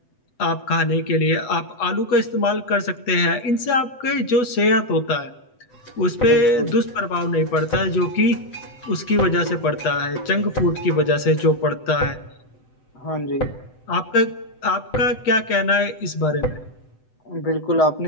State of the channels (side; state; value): right; late; 8.0 ms